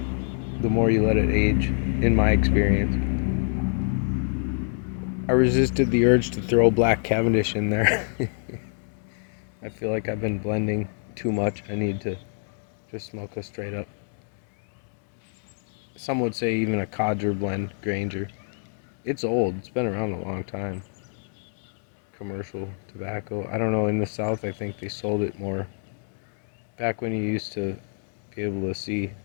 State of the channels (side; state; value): right; silent; 61 dB below the other